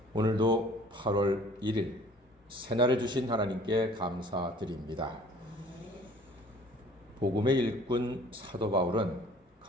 오늘도 8월 1일 새날을 주신 하나님께 감사드립니다. 복음의 일꾼 사도 바울은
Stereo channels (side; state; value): both; normal; correlation 0.52